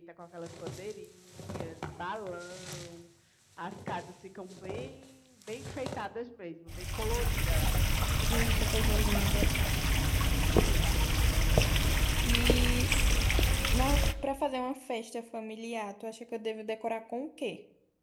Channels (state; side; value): identical; both; correlation 1.00